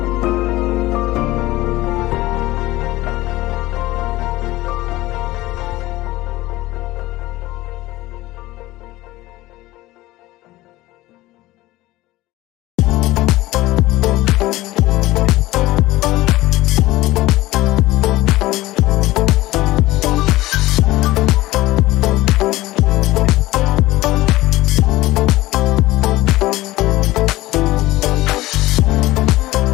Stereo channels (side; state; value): right; quieter; 17.9 dB